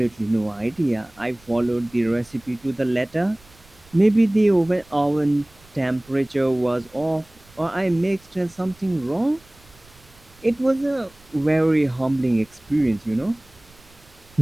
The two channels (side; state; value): right; noise; rumble, 27 dB below the sound